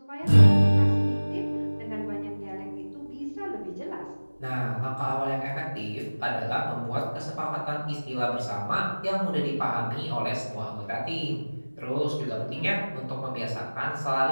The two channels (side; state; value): both; inverted; correlation -1.00